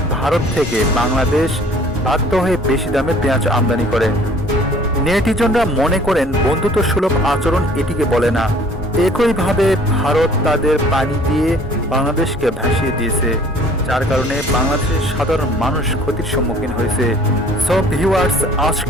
ভারত থেকে বাংলাদেশ বাধ্য হয়ে বেশি দামে পেঁয়াজ আমদানি করে। নেটিজনরা মনে করেন বন্ধুত্ব সুলভ আচরণ এটিকে বলে না। একইভাবে ভারত তাদের পানি দিয়ে বাংলাদেশকে ভাসিয়ে দিয়েছে, যার কারণে বাংলাদেশের সাধারণ মানুষ ক্ষতির সম্মুখীন হয়েছে। সব ভিউয়ার্স,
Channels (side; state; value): both; normal; correlation 0.54